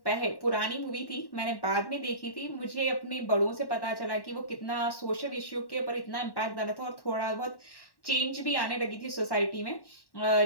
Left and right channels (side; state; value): right; late; 1.1 ms